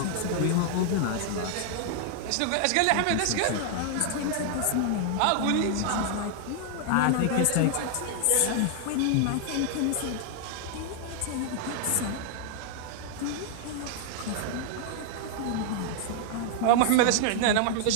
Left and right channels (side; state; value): both; different; correlation 0.00